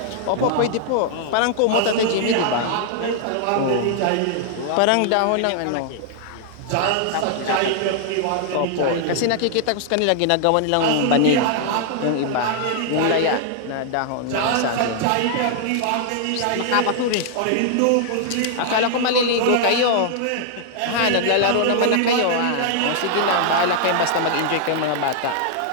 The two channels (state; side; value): different; both; correlation -0.01